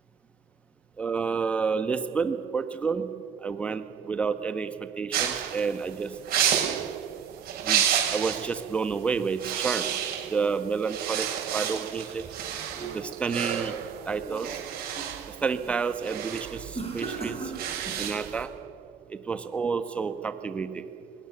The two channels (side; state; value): left; quieter; 6.3 dB